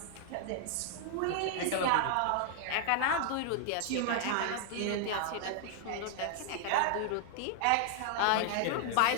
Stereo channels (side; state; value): both; different; correlation 0.00